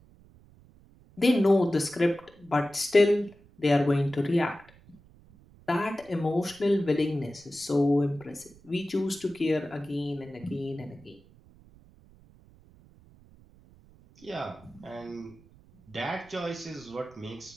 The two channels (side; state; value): right; noise; rumble, 26 dB below the sound